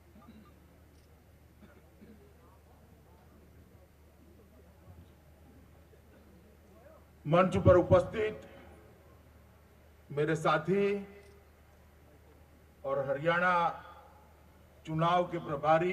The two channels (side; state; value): both; identical; correlation 1.00